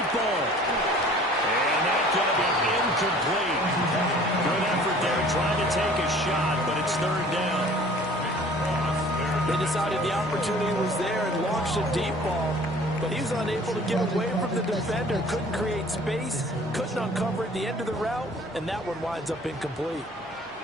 ball. And that's going to be incomplete. Good effort there trying to take a shot, but it's 3rd down. They decided the opportunity was there and launched a deep ball, but he was unable to get away from the defender, couldn't create space, couldn't uncover at the end of the route, and that one winds up incomplete.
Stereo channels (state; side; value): normal; both; correlation 0.50